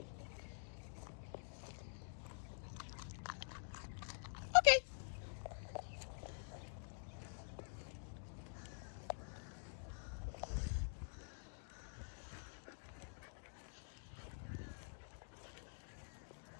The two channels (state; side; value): silent; right; digital silence